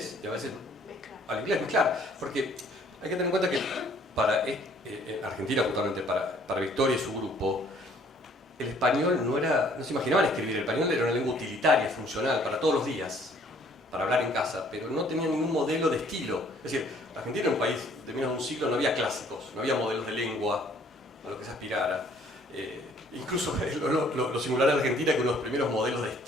y a veces al inglés, mezclar, porque hay que tener en cuenta que para Argentina, justamente para Victoria y su grupo, el español no se imaginaban escribir, el español era una lengua utilitaria, funcional, para todos los días, para hablar en casa, pero no tenía ningún modelo de estilo. Es decir, Argentina era un país de menos de un siglo, no había clásicos, no había modelos de lengua a lo que se aspirara. Incluso lo singular de Argentina es que uno de los primeros modelos de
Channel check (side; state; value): both; normal; correlation 0.60